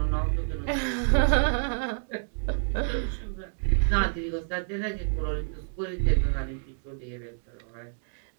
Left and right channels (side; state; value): left; silent; digital silence